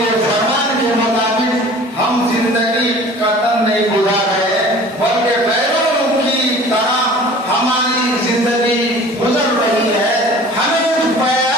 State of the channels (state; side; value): normal; both; correlation 0.45